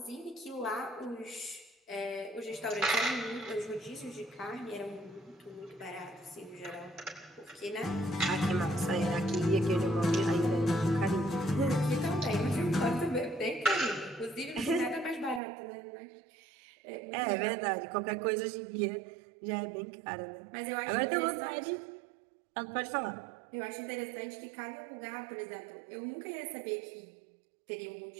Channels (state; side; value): drops out; left; at 15.4 s